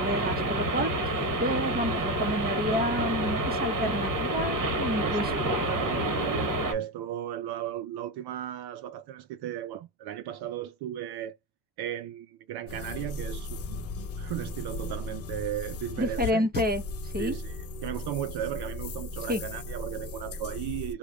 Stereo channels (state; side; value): normal; both; correlation 0.19